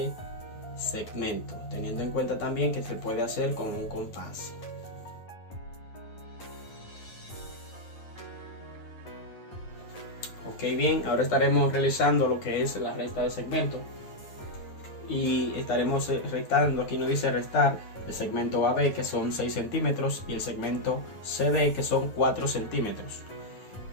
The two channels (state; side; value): late; right; 9.9 ms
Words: segmento, teniendo en cuenta también que se puede hacer con un compás. Ok, bien, ahora estaremos realizando lo que es la resta de segmento y estaremos restando. Aquí nos dice restar el segmento AB, que son 6 centímetros, y el segmento CD, que son 4 centímetros.